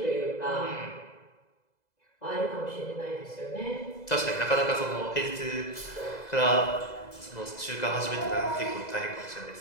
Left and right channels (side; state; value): right; late; 2.0 ms